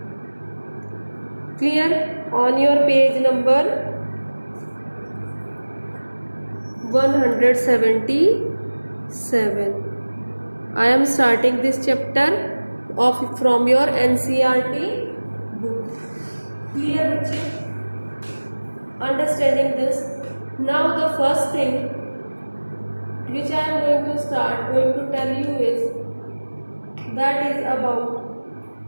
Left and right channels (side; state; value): both; inverted; correlation -1.00